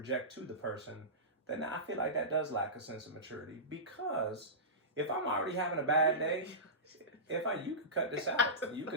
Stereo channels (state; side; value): normal; both; correlation -0.20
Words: to the person, then I feel like that does lack a sense of maturity, because if I'm already having a bad day, you could cut this out. You